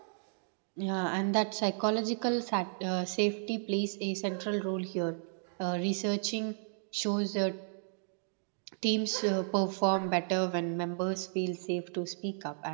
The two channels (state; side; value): silent; left; digital silence